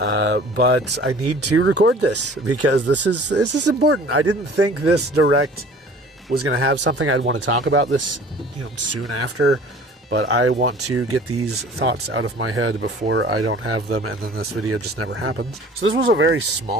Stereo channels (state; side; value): normal; both; correlation 0.48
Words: I need to record this because this is important. I didn't think this direct was going to have something I'd want to talk about this, soon after. But I want to get these thoughts out of my head before I don't have them, and then this video just never happens. So this was a very